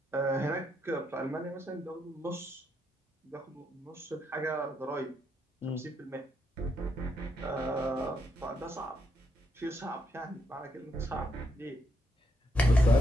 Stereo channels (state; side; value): normal; both; correlation 0.78